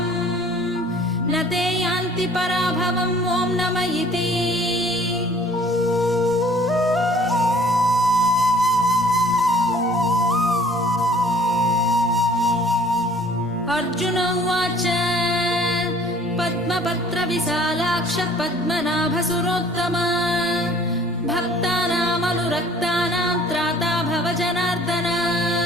न ते यान्ति पराभवम् ॐ नम इति अर्जुन उवाच पद्मपत्रविशालाक्ष पद्मनाभसुरोत्तम भक्तानामनुरक्तानां त्राता भव जनार्दन।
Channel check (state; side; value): normal; both; correlation 0.53